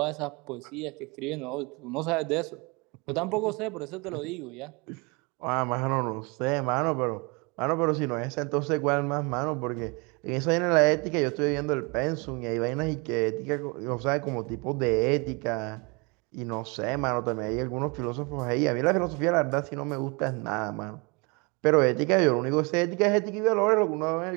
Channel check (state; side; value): quieter; left; 29.4 dB